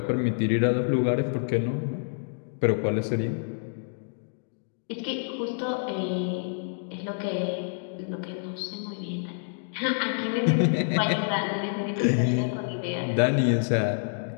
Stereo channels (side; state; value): right; silent; digital silence